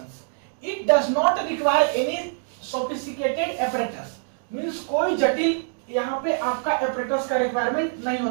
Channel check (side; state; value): left; silent; digital silence